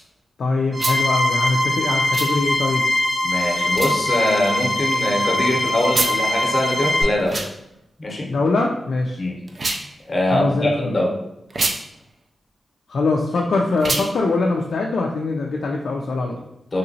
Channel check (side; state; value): both; normal; correlation 0.90